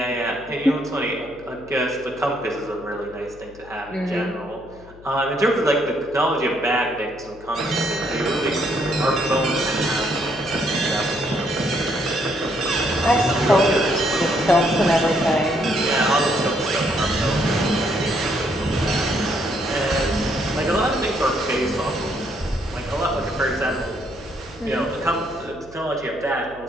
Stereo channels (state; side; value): noise; left; hum, 22 dB below the sound